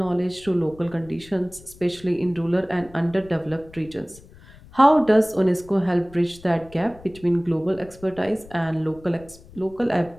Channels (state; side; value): noise; left; rumble, 22 dB below the sound